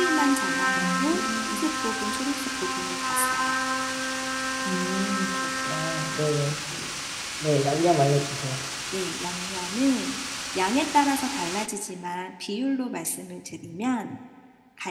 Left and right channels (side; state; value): both; identical; correlation 1.00